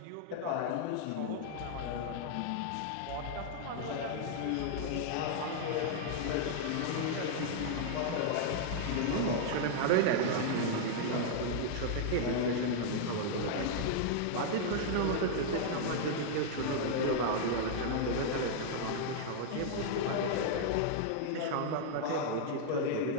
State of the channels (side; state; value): both; different; correlation -0.01